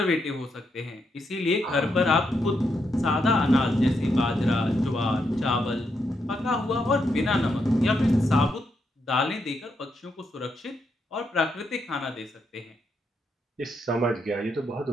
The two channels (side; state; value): both; normal; correlation 0.80